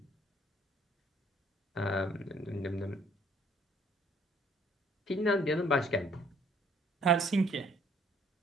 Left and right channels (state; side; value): normal; both; correlation 0.61